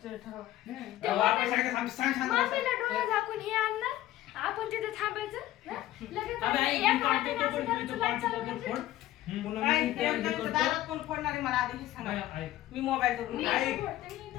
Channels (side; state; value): right; quieter; 14.7 dB